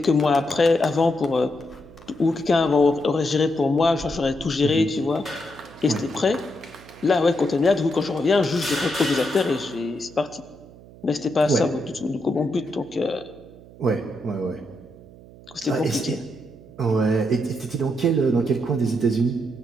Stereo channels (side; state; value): right; noise; hum, 21 dB below the sound